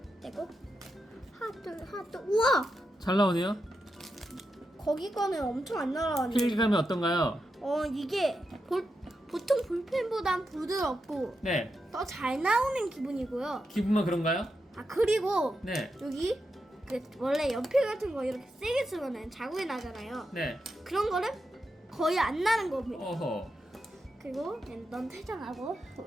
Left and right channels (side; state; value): both; normal; correlation 0.87